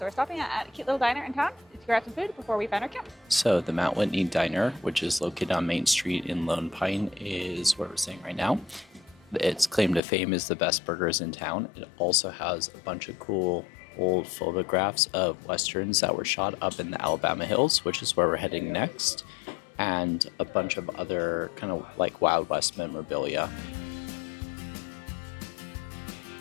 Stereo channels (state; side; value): drops out; right; at 10.0 s